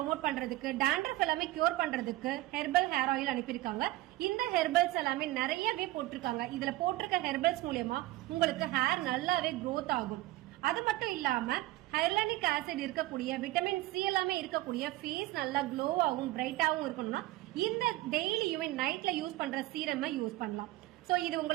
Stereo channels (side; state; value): left; quieter; 17.7 dB